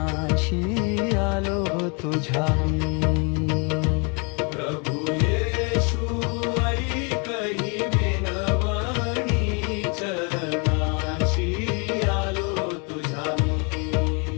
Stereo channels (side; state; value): right; quieter; 33.6 dB